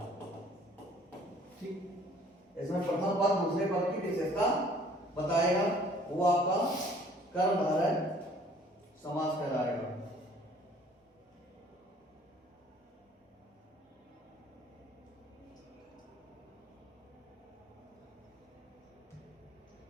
ठीक, इसमें प्रथम पद दूसरे पद की विशेषता बताएगा, वो आपका कर्मधारय समास कहलाएगा।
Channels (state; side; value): normal; both; correlation 0.56